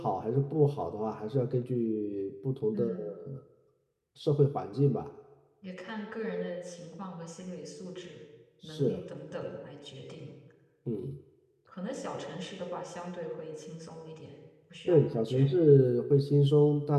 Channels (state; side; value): identical; both; correlation 1.00